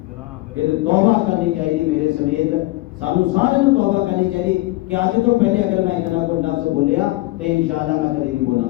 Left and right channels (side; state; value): right; quieter; 20.3 dB